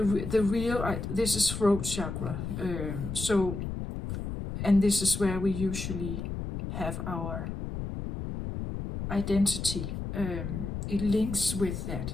real, this is throat chakra. And this is where we usually have our identity. It links with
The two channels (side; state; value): left; noise; rumble, 5 dB below the sound